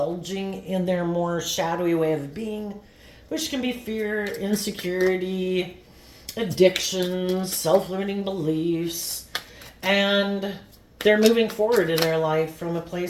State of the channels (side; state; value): both; identical; correlation 1.00